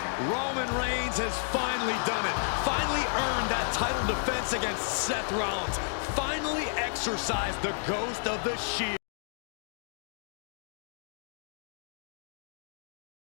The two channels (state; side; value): silent; right; digital silence